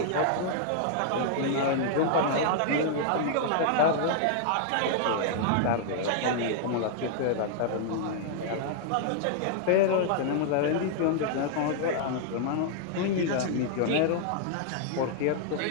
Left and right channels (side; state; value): both; different; correlation -0.01